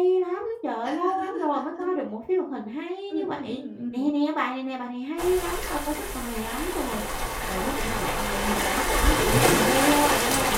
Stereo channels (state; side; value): identical; both; correlation 1.00